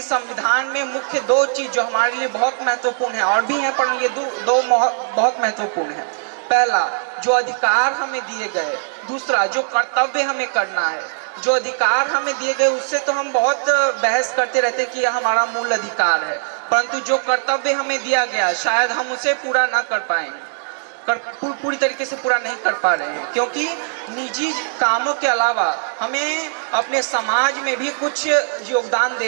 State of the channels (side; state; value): left; silent; 66 dB below the other